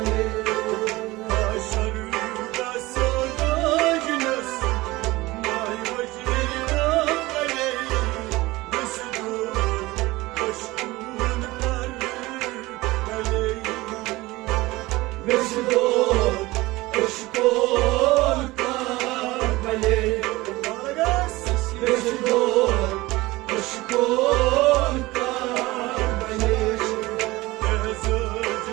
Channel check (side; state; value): left; quieter; 20.0 dB